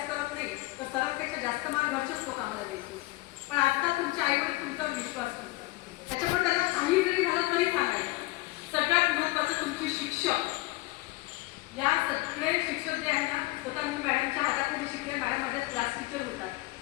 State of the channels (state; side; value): quieter; right; 20.6 dB